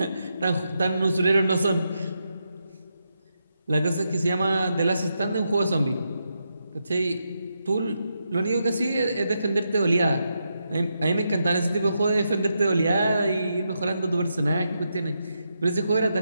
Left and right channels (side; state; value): both; inverted; correlation -0.84